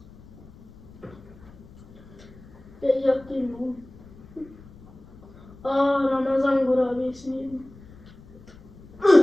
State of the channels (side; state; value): left; noise; rumble, 21 dB below the sound